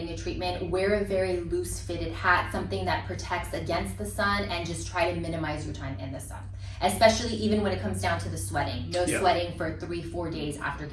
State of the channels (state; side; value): identical; both; correlation 1.00